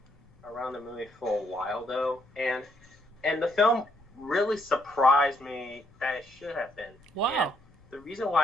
around the movie for a while though, and the film really surprised me that it should have been. Wow. And the reason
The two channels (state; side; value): noise; left; rumble, 28 dB below the sound